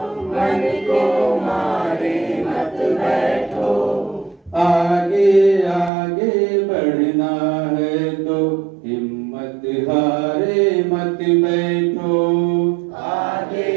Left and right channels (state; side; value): drops out; left; at 5.9 s